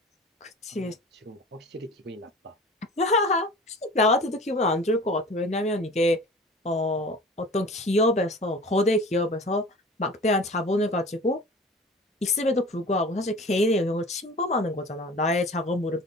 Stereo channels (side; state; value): both; normal; correlation 0.41